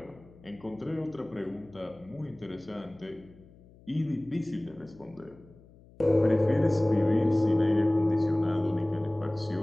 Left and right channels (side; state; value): left; noise; hum, 25 dB below the sound